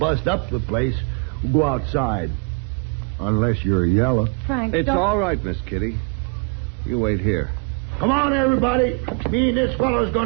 up the place. We'll go outside. Unless you're yellow. Frank, It's don't... all right, Miss Kitty. You wait here. Come on, everybody. Me and this fellow's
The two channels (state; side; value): quieter; left; 31.9 dB